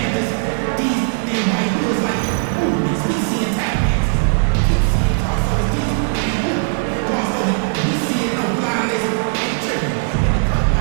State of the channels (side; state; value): left; silent; digital silence